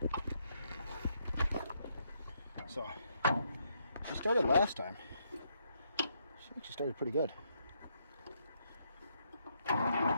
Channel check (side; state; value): both; inverted; correlation -0.76